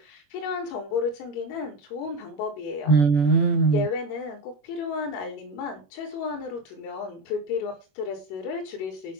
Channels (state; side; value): late; right; 21 ms